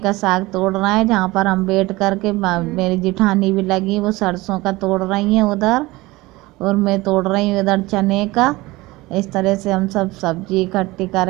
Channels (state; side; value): quieter; left; 20.7 dB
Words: साग तोड़ रहे हैं, जहाँ पर हम बैठ कर के मेरी जेठानी भी लगी, वो सरसों का तोड़ रही हैं उधर, और मैं तोड़ रही हूँ इधर चने का। इस तरह से हम सब सब्जी इकट्ठी